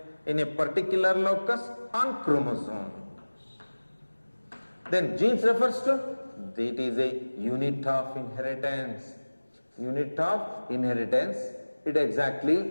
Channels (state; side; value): inverted; both; correlation -1.00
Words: in a particular locus on chromosome. Then genes refers to, it is a unit of inheritance. Unit of inheritance, it